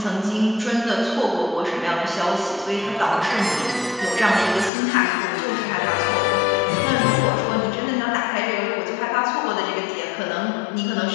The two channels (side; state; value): right; drops out; at 4.7 s